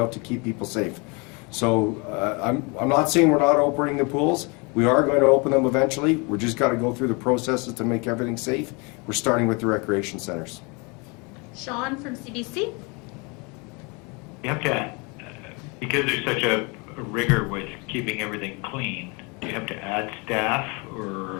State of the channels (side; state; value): right; quieter; 30.0 dB